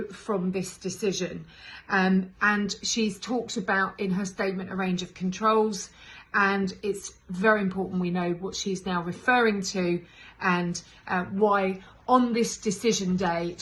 from this decision. And she's talked about in her statement a range of controls, and it's very important we know what she's now referring to and why on this decision day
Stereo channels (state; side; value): identical; both; correlation 1.00